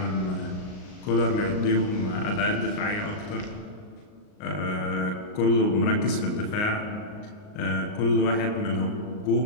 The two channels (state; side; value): late; right; 38 ms